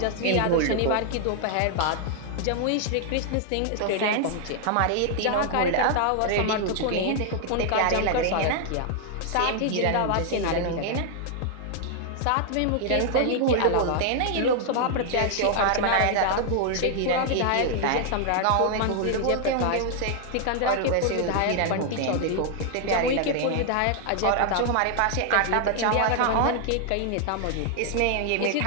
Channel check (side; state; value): both; different; correlation 0.00